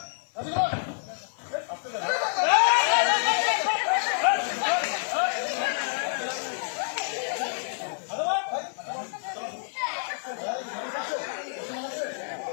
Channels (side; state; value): right; silent; 59 dB below the other